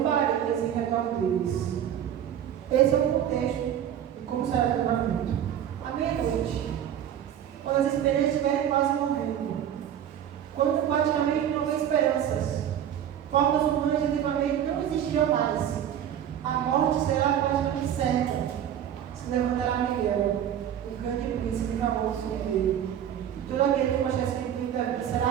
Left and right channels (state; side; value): quieter; left; 10.0 dB